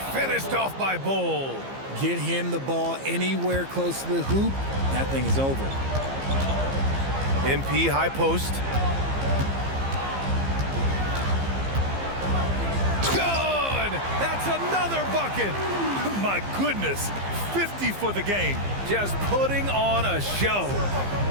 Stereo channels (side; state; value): left; late; 15 ms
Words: finished off by Bull. Get him the ball anywhere close to the hoop, that thing is over. MP high post. Good! That's another bucket. My goodness, 50 for the game. Just putting on a show.